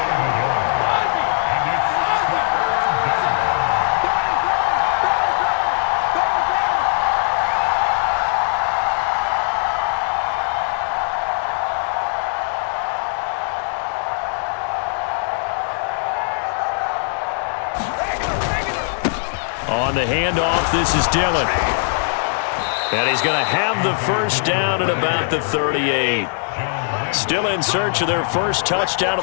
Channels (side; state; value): right; silent; 63 dB below the other